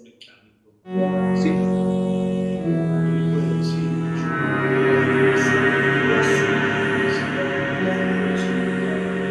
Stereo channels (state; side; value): identical; both; correlation 1.00